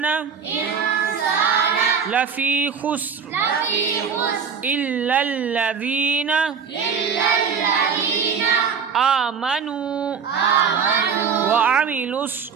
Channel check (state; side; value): quieter; left; 6.4 dB